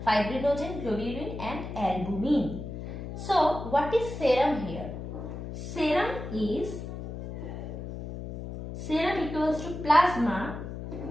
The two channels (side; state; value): left; noise; hum, 8 dB below the sound